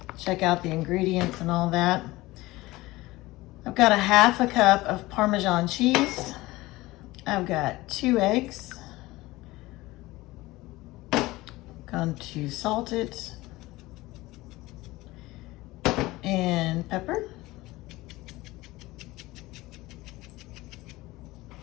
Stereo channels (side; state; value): right; quieter; 19.4 dB